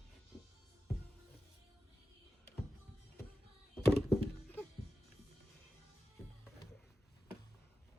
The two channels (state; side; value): normal; both; correlation 0.93